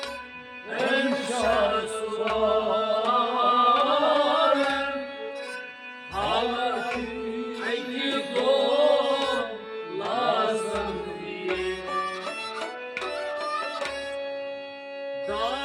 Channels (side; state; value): both; identical; correlation 1.00